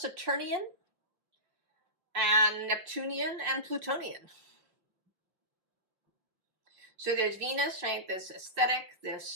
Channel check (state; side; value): late; left; 5.5 ms